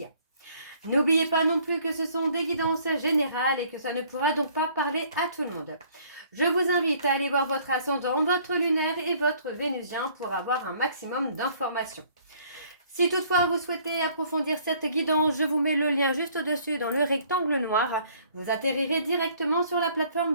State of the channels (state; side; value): inverted; both; correlation -0.59